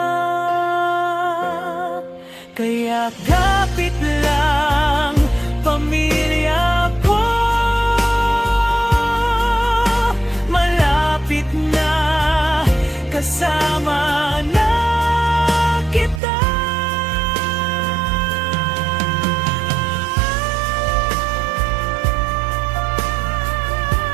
Kaya kapit lang pamilya ko, malapit na kasama na kita.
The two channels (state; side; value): drops out; left; at 16.2 s